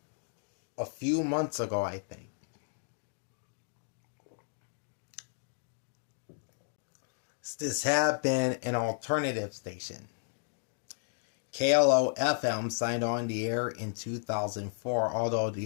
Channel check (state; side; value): silent; right; digital silence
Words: a few months ago, I think. This had been an alternative station. KLO FM signed on the air in 2004, although